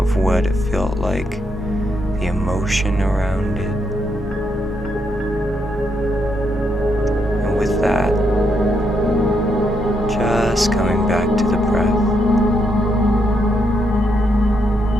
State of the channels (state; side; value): normal; both; correlation 0.79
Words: what it felt like, the emotion around it. And with that, just coming back to the breath,